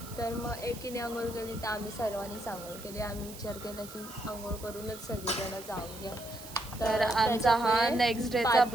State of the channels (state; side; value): noise; right; hiss, 15 dB below the sound